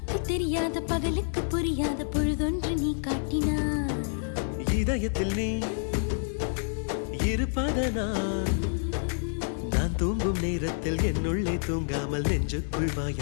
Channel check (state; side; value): silent; right; digital silence